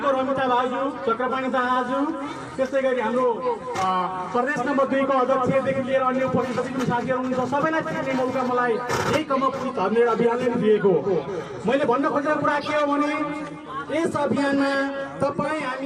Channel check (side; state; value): both; identical; correlation 1.00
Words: रमिता भाउजू, चक्रपाणी दाहाजू, त्यस्तै गरी हाम्रो प्रदेश नम्बर 2 को अध्यक्षदेखि लिएर अन्य उपस्थित जति पनि साथीहरू हुनुहुन्छ सबैलाई चिन्ने मौका मलाई यही कम अप विथ 100 अभियानले दिएको। मैले भन्न खोजेको कुरा के हो भने यस अभियानमा तपाईँ